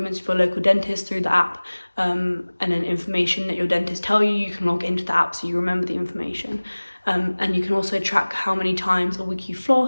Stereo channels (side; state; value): both; inverted; correlation -1.00